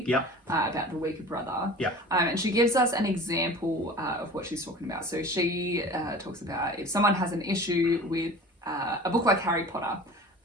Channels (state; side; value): normal; both; correlation 0.40